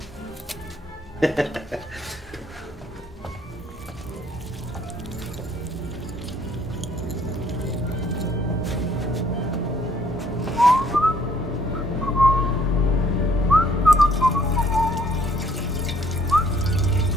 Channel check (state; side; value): normal; both; correlation 0.62